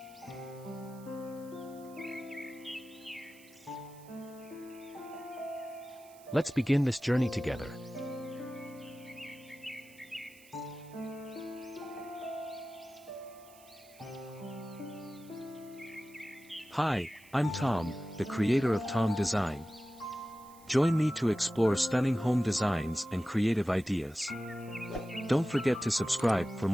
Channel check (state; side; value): noise; right; hiss, 24 dB below the sound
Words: Let's begin this journey together. Hi, I'm Tom, the creator of Tom Design. Join me to explore stunning home designs and creative ideas. Don't forget to subscribe for